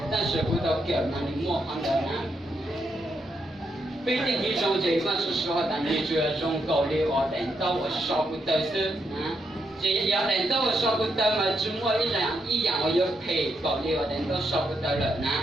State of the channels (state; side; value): normal; both; correlation 0.80